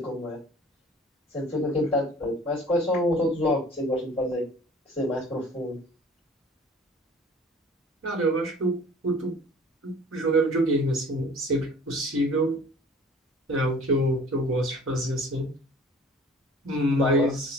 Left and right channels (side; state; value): both; normal; correlation 0.48